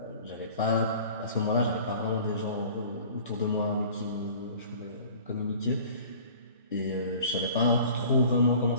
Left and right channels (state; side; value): inverted; both; correlation -0.46